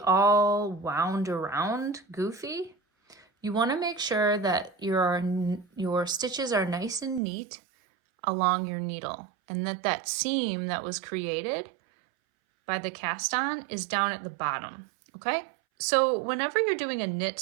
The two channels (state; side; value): drops out; left; at 7.2 s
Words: wound around goofy. You want to make sure that your stitches are nice and neat along your needle, and that seam that was created by the cast on is down at the bottom, okay? So whenever you're doing a knit